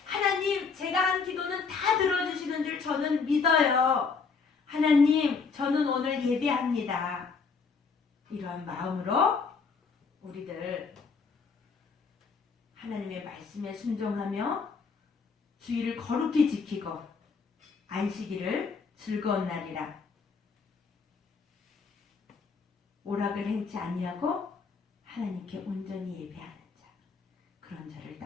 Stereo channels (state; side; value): quieter; right; 5.1 dB